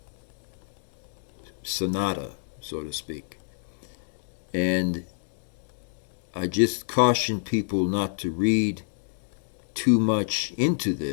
sonata, so to speak. And I just caution people not to read too much into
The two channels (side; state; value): right; silent; digital silence